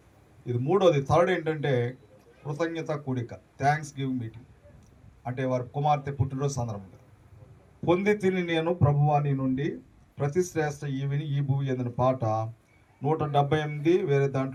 ఇది మూడోది, థర్డ్ ఏంటంటే కృతజ్ఞత కూడిక, థ్యాంక్స్ గివింగ్ మీటింగ్. అంటే వారి కుమార్తె పుట్టినరోజు సందర్భంగా పొంది తిని నేను ప్రభువాని నుండి ప్రతి శ్రేష్ఠ ఈవిని ఈ భూమి ఎందిన పాట 178, వేరే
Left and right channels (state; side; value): identical; both; correlation 1.00